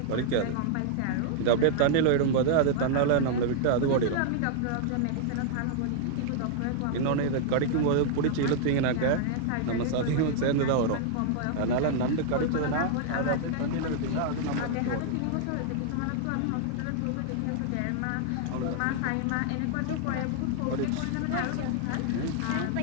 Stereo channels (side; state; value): both; different; correlation -0.01